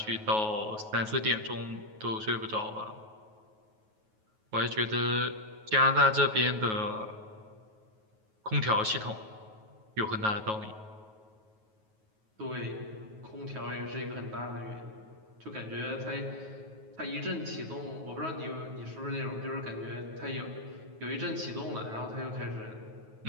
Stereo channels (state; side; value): late; left; 9.3 ms